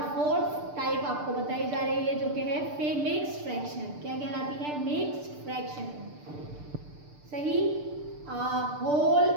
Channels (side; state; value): left; late; 6.7 ms